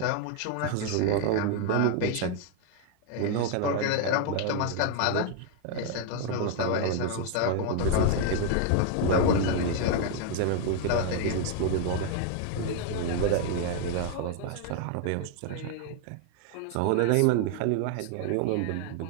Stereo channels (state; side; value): different; both; correlation 0.00